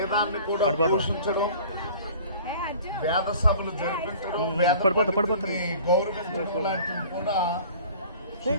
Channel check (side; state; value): both; inverted; correlation -0.47